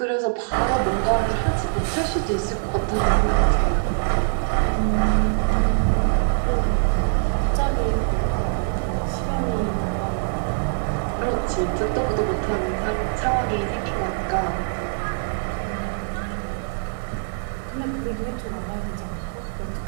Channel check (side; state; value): left; silent; 63 dB below the other